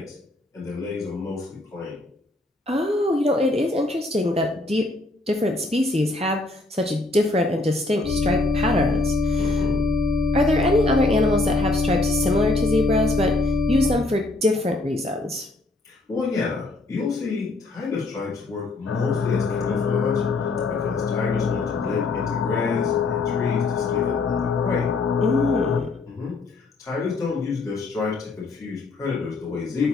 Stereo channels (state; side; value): quieter; right; 3.1 dB